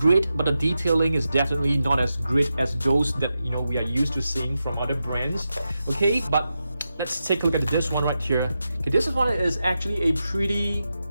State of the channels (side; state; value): both; inverted; correlation -0.89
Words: but the detailing is definitely not as great as those that, you know, we are used to seeing from other brands. Okay, but let's take a look at this one right here. Okay, this one is actually a pretty,